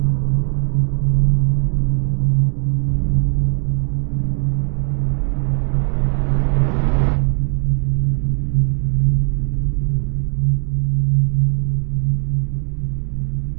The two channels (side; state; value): left; silent; 67 dB below the other